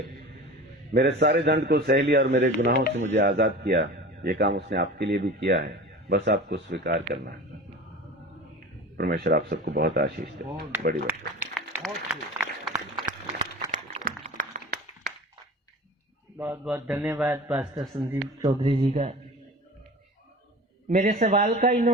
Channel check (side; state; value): both; normal; correlation 0.36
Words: मेरे सारे दंड को सह लिया और मेरे गुनाहों से मुझे आजाद किया। ये काम उसने आपके लिए भी किया है, बस आपको स्वीकार करना है। परमेश्वर आप सबको बहुत आशीष दे। बड़ी बात है। बहुत बहुत धन्यवाद पास्टर संदीप चौधरी जी का। मेरे सवाल का